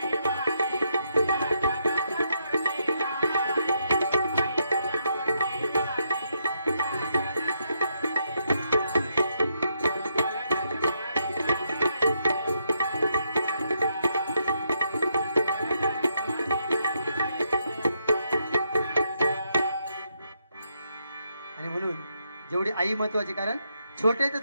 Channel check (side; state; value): both; inverted; correlation -0.78